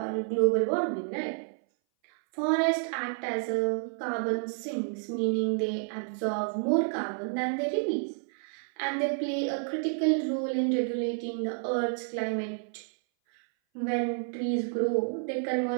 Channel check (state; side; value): silent; left; 58 dB below the other